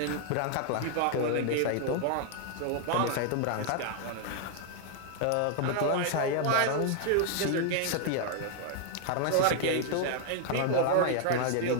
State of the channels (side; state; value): both; different; correlation 0.00